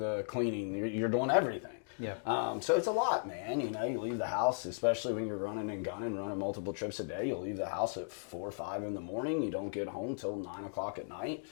cleaning. You're doing everything. Yeah. So it's a lot, man. You leave the house, especially when you're running and gunning, running multiple trips a day. You'll leave the house at 4 or 5 in the morning. You don't get home till 9 o'clock at night.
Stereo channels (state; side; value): silent; right; digital silence